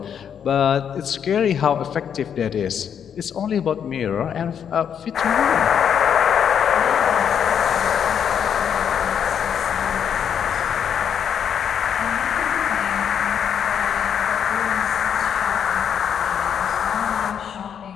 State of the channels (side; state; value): right; quieter; 8.2 dB